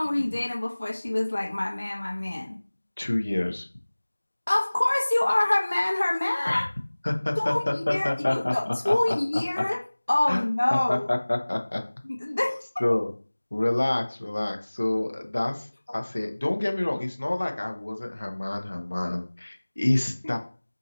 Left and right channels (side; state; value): both; inverted; correlation -1.00